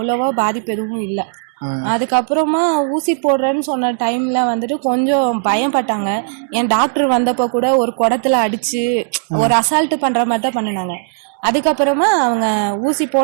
பாதிப்பு எதுவும் இல்லை. அதுக்கப்புறமா ஊசி போடுறேன்னு சொன்ன டைம்ல வந்துட்டு கொஞ்சம் பயப்பட்டாங்க. என் டாக்டர் வந்தப்போ கூட ஒரு குடத்துல அடிச்சு ஒரு அசால்ட்டு பண்ற மாதிரி தான் பண்ணினாங்க. அதுக்கப்புறமா அவங்க ஊசி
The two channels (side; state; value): left; silent; 69 dB below the other